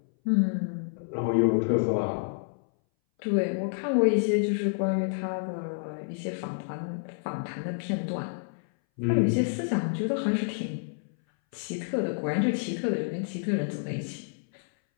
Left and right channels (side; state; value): right; silent; 59 dB below the other